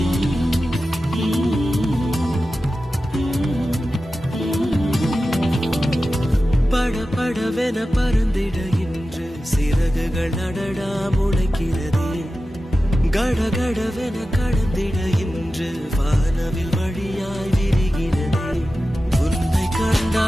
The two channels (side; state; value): both; normal; correlation 0.94